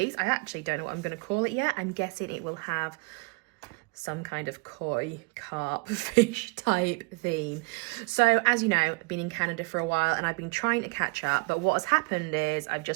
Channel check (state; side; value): quieter; left; 29.5 dB